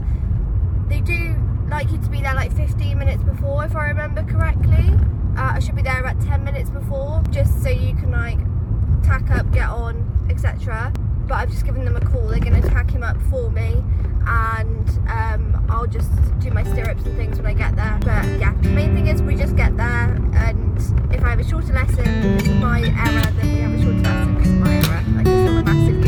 They do like you to be there like 15 minutes before, if I remember correctly. I should be there about 10 minutes before, just so you can like tack up, get on, etc. But I've just given them a call. They're going to tack him up for me, and I'll just do my stirrups and things when I get there. But yeah, the main thing is we just get there, and if I have a shorter lesson because of my error, then we have a shorter lesson because of my error. Like, it's not a massive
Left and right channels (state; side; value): identical; both; correlation 1.00